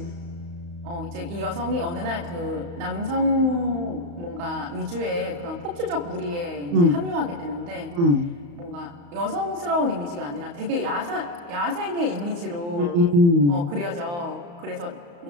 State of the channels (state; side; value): late; left; 35 ms